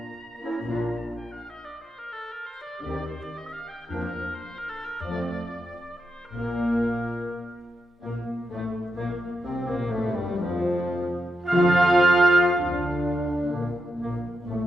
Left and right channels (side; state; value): both; normal; correlation 0.85